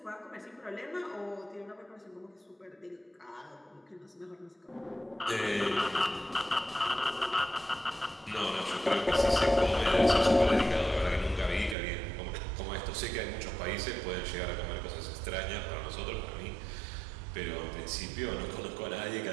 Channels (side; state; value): left; drops out; at 11.8 s